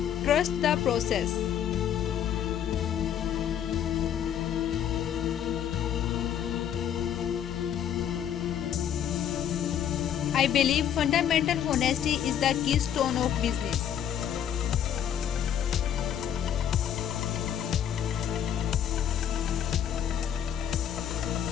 Trust the process. I believe fundamental honesty is the keystone of business.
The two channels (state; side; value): quieter; right; 9.6 dB